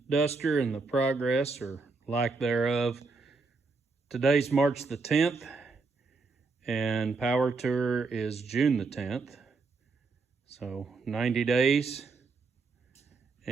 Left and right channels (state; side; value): quieter; left; 4.1 dB